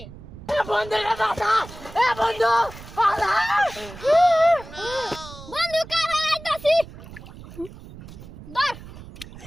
বন্ধু বাঁচা বন্ধু বাঁচা বন্ধু কারা আইতাছি ধর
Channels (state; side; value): noise; right; rumble, 16 dB below the sound